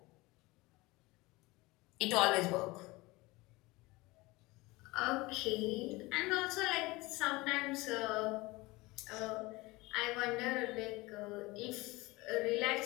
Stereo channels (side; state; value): right; quieter; 22.0 dB